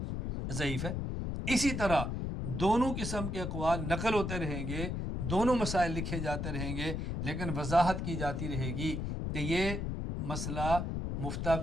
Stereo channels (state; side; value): noise; left; rumble, 2 dB below the sound